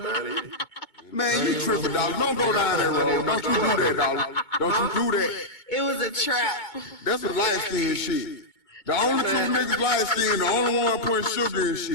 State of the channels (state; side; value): late; right; 2.2 ms